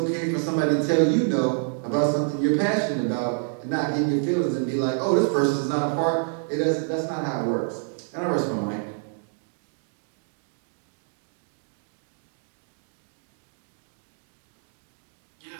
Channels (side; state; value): left; silent; digital silence